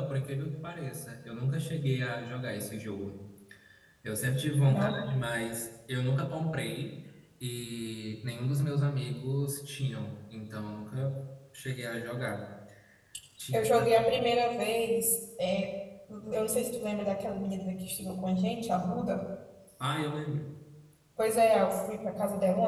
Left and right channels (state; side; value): identical; both; correlation 1.00